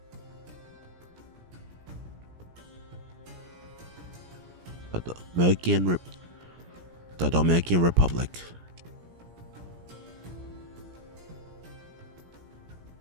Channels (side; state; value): left; late; 17 ms